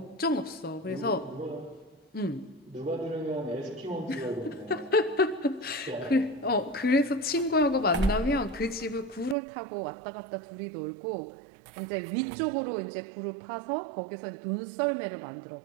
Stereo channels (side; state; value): left; drops out; at 9.3 s